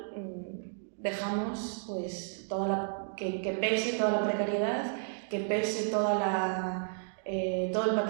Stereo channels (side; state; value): left; silent; digital silence